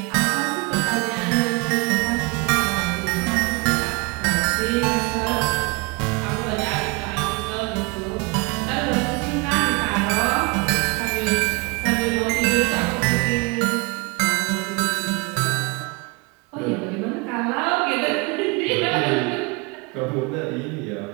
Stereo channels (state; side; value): quieter; left; 28.3 dB